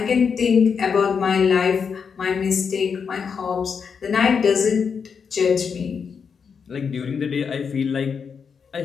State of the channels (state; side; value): quieter; right; 6.2 dB